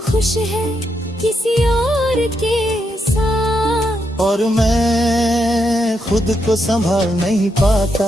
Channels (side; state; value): both; normal; correlation 0.81